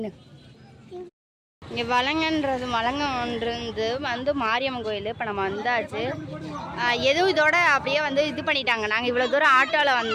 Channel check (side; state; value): both; identical; correlation 1.00